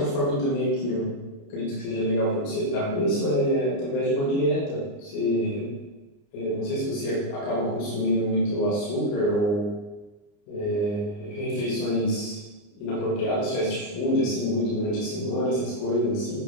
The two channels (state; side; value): late; right; 29 ms